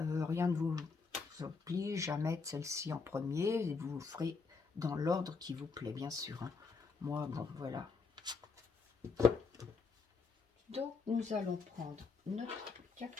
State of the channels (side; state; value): right; quieter; 4.7 dB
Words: ne vous oblige à mettre celle-ci en premier, et vous ferez dans l'ordre qui vous plaît, bien sûr. Hein. Moi, bon, voilà. Donc, nous allons prendre notre